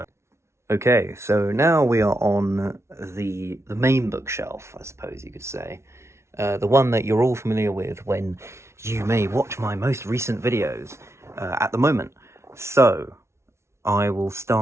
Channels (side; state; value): left; late; 0.13 ms